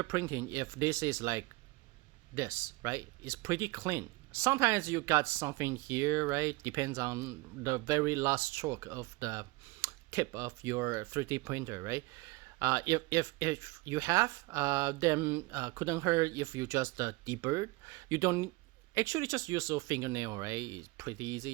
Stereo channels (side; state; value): left; quieter; 23.2 dB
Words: printing if this is like this, right? It's pretty clean. Sometimes you got something here, right? Depends on the very last stroke of the tip of your 3D printer, right? If you have, then couldn't hurt if you just deburr. You don't actually just use your fingernail, right? It's pretty